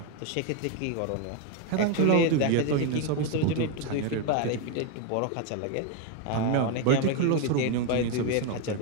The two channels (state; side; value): different; both; correlation 0.01